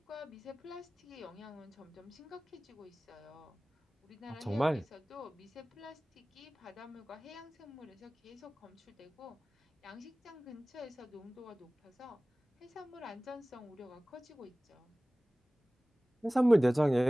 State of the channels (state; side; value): normal; both; correlation 0.98